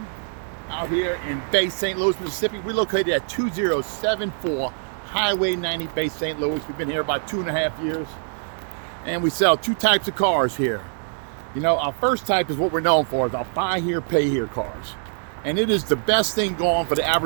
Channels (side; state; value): left; silent; digital silence